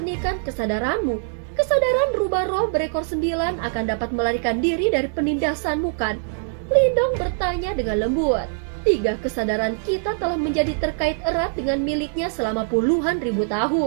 kesadaranmu, kesadaran rubah roh berekor 9 akan dapat melarikan diri dari penindasanmu kan? Lindong bertanya dengan lembut. Tiga kesadaran kita telah menjadi terkait erat dengan miliknya selama puluhan ribu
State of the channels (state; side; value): silent; left; 64 dB below the other